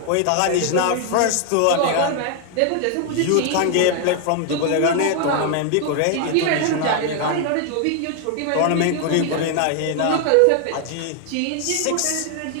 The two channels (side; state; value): both; different; correlation 0.00